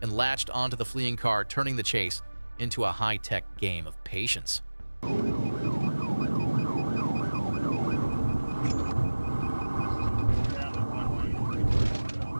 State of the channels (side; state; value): both; inverted; correlation -1.00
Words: and latched onto the fleeing car, turning the chase into a high-tech game of patience.